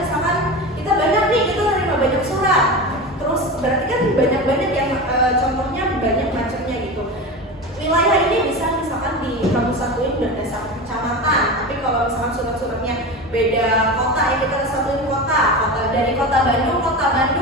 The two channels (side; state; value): both; normal; correlation 0.26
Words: misalkan kita banyak nih, kita terima banyak surat. Terus berarti kan banyak yang contohnya banyak macamnya gitu. Wilayah ini bisa misalkan kamu satuin berdasarkan kecamatan. Tapi kalau misalkan surat-suratnya beda kota, ya kita satuin kota. Dari kota